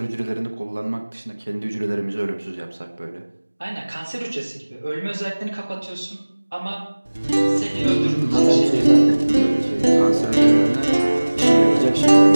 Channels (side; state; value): both; inverted; correlation -1.00